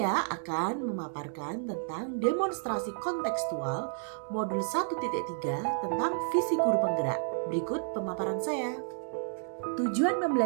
akan memaparkan tentang demonstrasi kontekstual modul 1.3 tentang visi guru penggerak. Berikut pemaparan saya. Tujuan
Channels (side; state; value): left; silent; digital silence